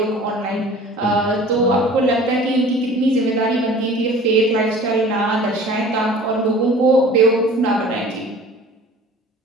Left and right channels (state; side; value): normal; both; correlation 0.45